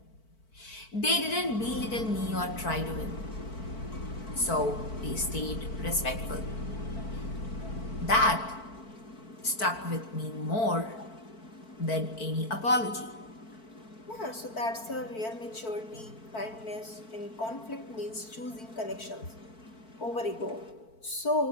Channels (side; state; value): right; late; 4.5 ms